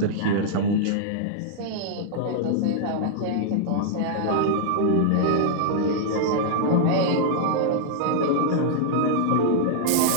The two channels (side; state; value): both; different; correlation -0.01